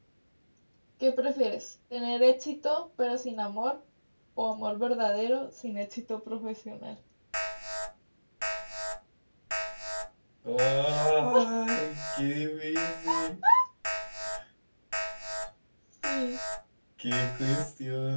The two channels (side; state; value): both; inverted; correlation -1.00